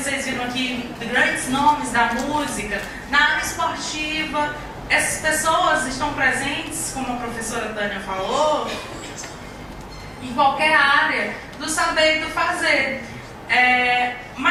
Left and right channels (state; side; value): identical; both; correlation 1.00